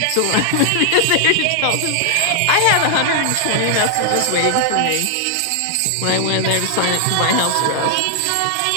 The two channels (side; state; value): both; different; correlation 0.00